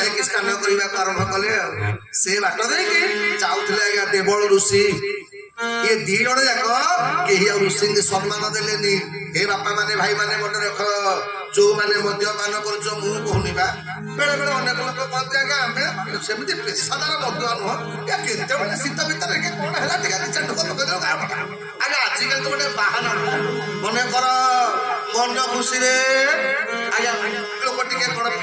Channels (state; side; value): identical; both; correlation 1.00